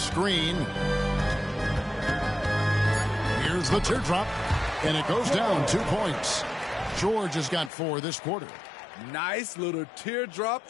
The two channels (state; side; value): drops out; right; at 7.7 s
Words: Here's the teardrop. And it goes down 2 points. George has got 4 this quarter. Nice little teardrop